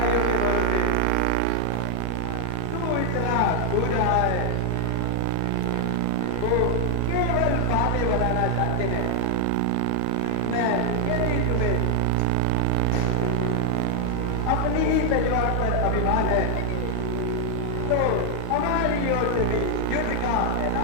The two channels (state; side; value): different; both; correlation 0.00